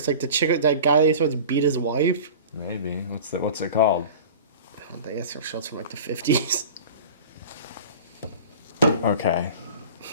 like the chick, that guy that supposed to beat his wife? Maybe. What's it called? I think it's a show from like the 50s. Okay.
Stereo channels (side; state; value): both; inverted; correlation -0.38